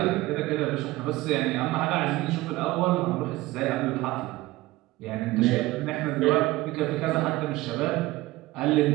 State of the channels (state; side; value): quieter; left; 18.9 dB